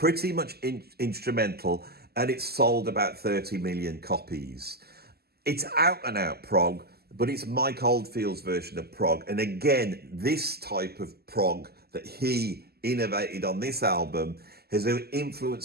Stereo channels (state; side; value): late; left; 0.46 ms